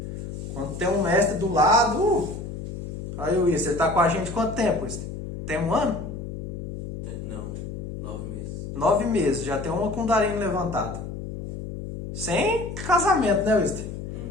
Quando tem um mestre do lado... Aí, Luiz, você tá com a gente quanto tempo, Luiz? Tem 1 ano? Não, 9 meses. 9 meses, já tem uma Kundalini levantada. Sem casamento, né, Luiz?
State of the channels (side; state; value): left; noise; hum, 7 dB below the sound